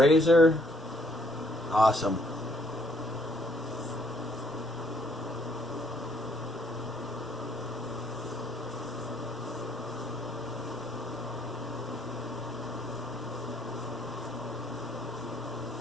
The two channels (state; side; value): normal; both; correlation 0.66